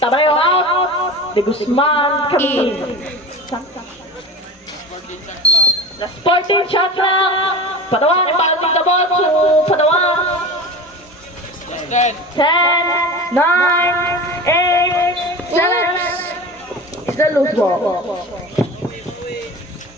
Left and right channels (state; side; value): normal; both; correlation 0.32